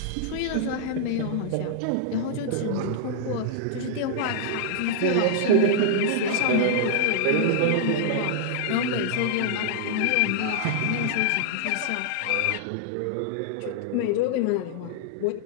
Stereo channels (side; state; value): both; different; correlation -0.01